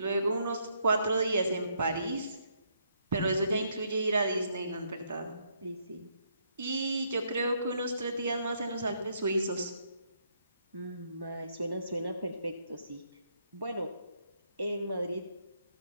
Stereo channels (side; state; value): both; inverted; correlation -0.73